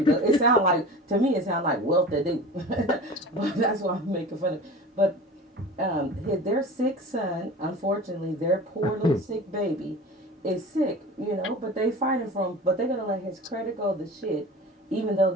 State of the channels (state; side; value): normal; both; correlation 0.36